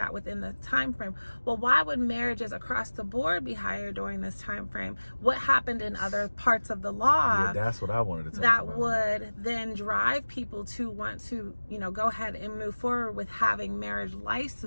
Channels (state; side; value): inverted; both; correlation -1.00